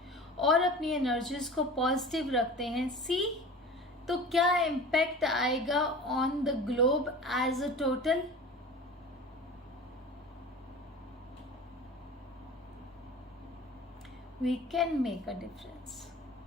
और अपनी एनर्जीज को पॉजिटिव रखते हैं, सी तो क्या इम्पैक्ट आएगा on the globe as a total. We can make a difference.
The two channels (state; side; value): normal; both; correlation 0.38